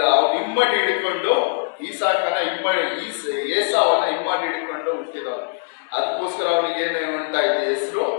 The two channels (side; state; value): right; silent; digital silence